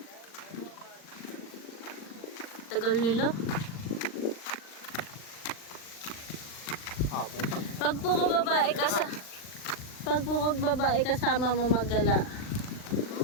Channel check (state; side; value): late; right; 39 ms